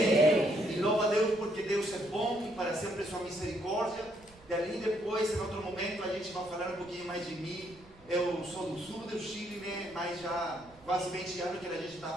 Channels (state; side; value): noise; right; rumble, 25 dB below the sound